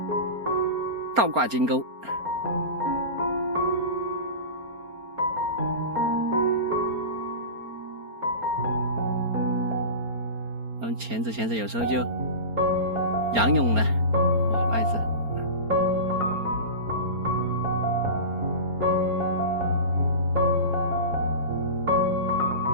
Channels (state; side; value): late; left; 4.3 ms